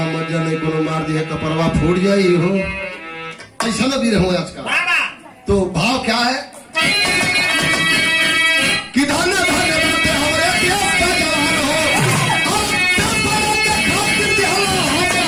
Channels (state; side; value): identical; both; correlation 1.00